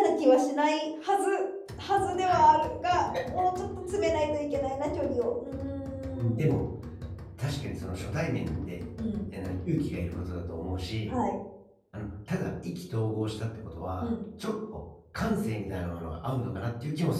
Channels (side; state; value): both; identical; correlation 1.00